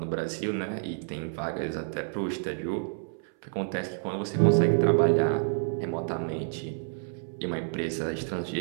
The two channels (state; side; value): silent; left; 59 dB below the other